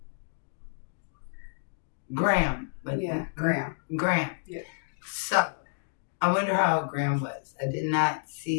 Graham. Graham. Yeah. So, I wonder how Graham was. I did not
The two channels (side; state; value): right; silent; digital silence